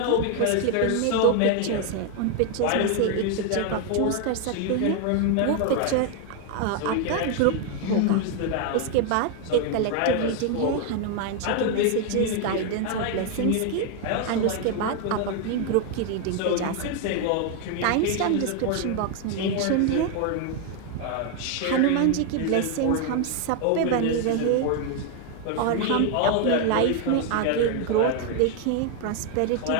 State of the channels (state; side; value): different; both; correlation 0.01